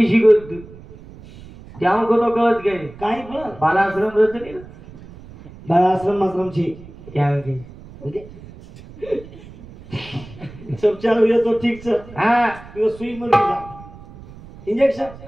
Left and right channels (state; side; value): noise; right; rumble, 18 dB below the sound